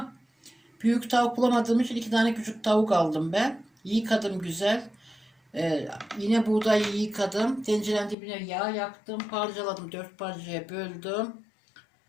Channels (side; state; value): right; drops out; at 8.2 s